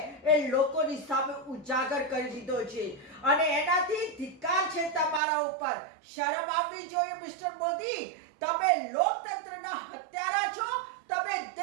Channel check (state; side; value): drops out; left; at 5.2 s